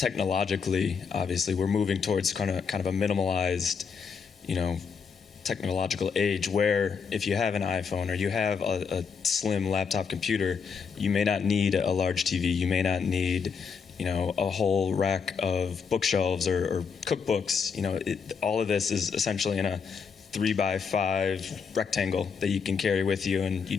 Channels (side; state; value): right; quieter; 6.0 dB